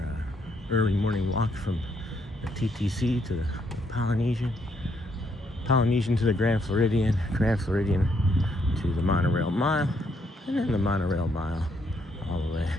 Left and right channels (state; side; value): normal; both; correlation 0.74